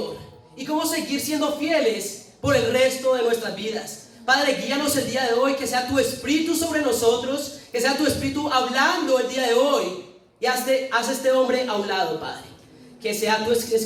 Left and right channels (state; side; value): identical; both; correlation 1.00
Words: y cómo seguir siendo fieles por el resto de nuestras vidas. Padre, guíanos el día de hoy, que sea tu Espíritu sobre nosotros, que sea tu Espíritu hablando el día de hoy, y haz este hombre a un lado, Padre. Que sea tus